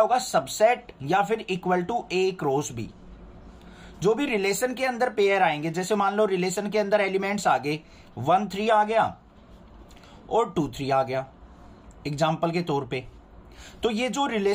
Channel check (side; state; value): both; identical; correlation 1.00